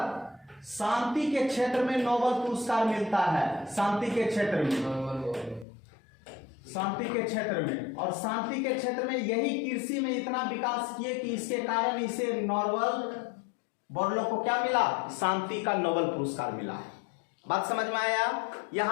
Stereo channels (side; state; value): right; drops out; at 5.7 s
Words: शांति के क्षेत्र में नोबेल पुरस्कार मिलता है। शांति के क्षेत्र में, शांति के क्षेत्र में। और शांति के क्षेत्र में यही कृषि में इतना विकास किए कि इसके कारण इसे नोबेल बोरलॉग को क्या मिला? शांति का नोबेल पुरस्कार मिला। बात समझ में आया?